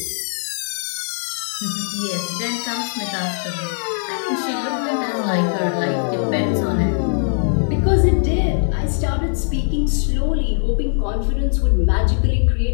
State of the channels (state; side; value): silent; right; digital silence